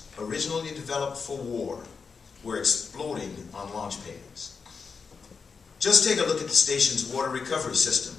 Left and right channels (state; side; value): quieter; right; 5.3 dB